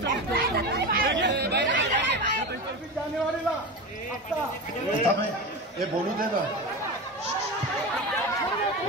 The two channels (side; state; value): both; normal; correlation 0.24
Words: हे बोलू दे ना.